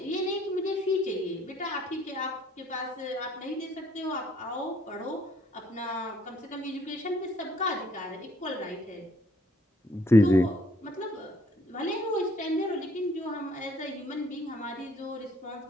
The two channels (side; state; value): both; normal; correlation 0.63